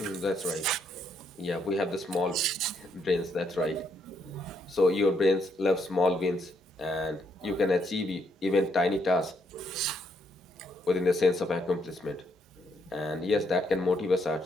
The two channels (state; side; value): normal; both; correlation 0.74